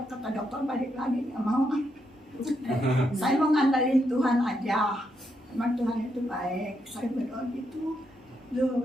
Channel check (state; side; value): normal; both; correlation 0.80